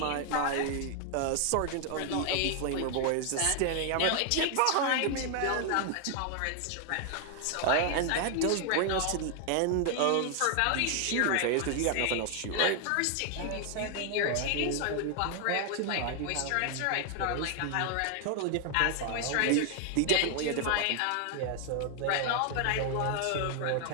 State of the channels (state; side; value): different; both; correlation 0.00